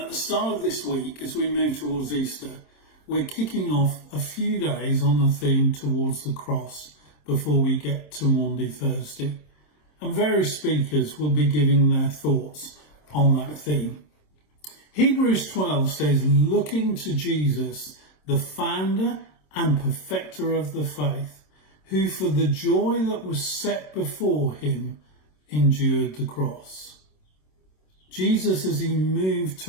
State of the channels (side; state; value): right; late; 27 ms